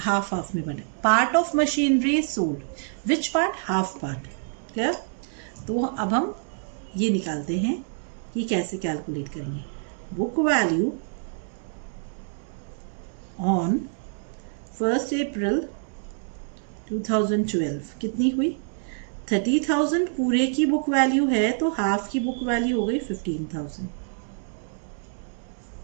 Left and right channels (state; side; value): silent; left; 61 dB below the other